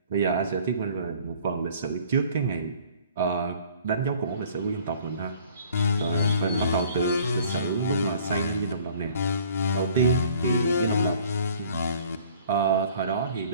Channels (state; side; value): inverted; both; correlation -0.53